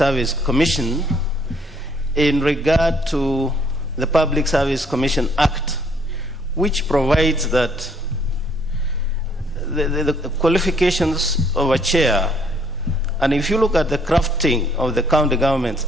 Commission in regard to the Public Service Commission Act, which provides that the qualifications of a chair, and if you look at the crafting of the County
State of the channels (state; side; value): normal; both; correlation 0.65